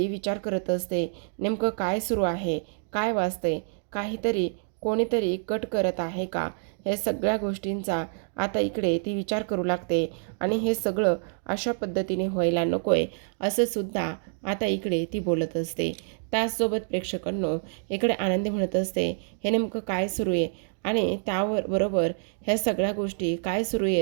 विचार करत असते, नेमकं काय सुरू आहे, काय वाजतंय, काहीतरी कोणीतरी कट करत आहे का, हे सगळ्या गोष्टींचा आता इकडे ती विचार करू लागते. आणि हे सगळं अशा पद्धतीने व्हायला नको आहे, असं सुद्धा आता इकडे ती बोलत असते. त्याचसोबत प्रेक्षकांनो, इकडे आनंदी म्हणत असते, हे नेमकं काय सुरू आहे आणि त्यावर बरोबर ह्या सगळ्या गोष्टी काय सुरू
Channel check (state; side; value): silent; left; digital silence